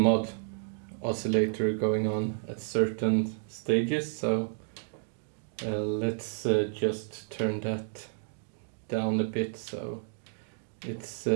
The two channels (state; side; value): silent; left; digital silence